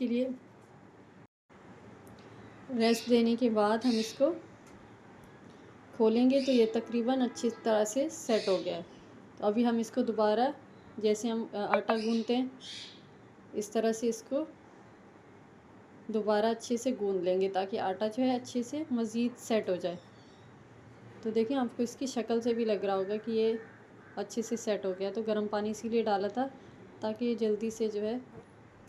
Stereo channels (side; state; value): both; identical; correlation 1.00